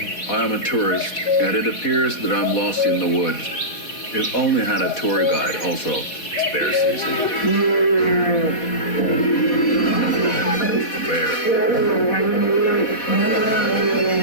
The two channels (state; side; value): late; right; 4.1 ms